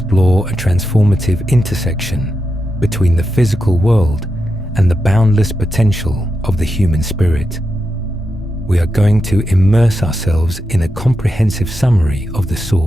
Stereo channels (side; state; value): both; normal; correlation 0.87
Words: a transformative intersection between the physical world and the boundless potential of the human spirit. We are going to immerse ourselves in a comprehensive summary of The